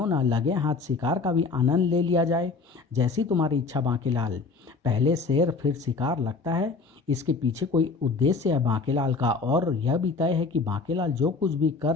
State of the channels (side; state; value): right; quieter; 4.3 dB